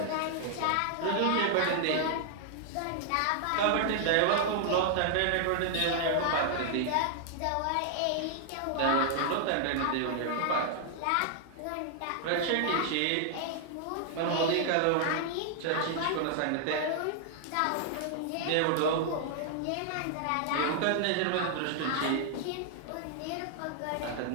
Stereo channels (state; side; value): different; both; correlation -0.01